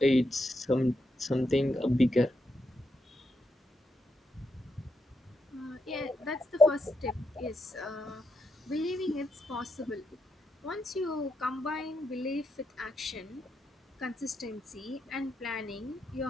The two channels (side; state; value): both; normal; correlation 0.82